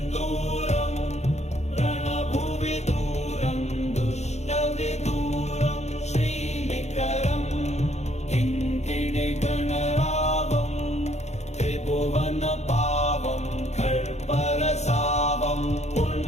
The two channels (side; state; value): right; late; 0.32 ms